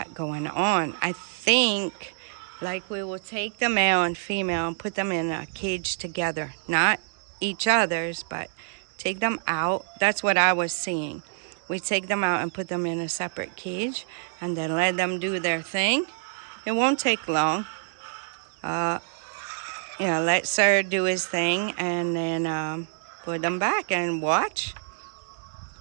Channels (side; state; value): left; silent; digital silence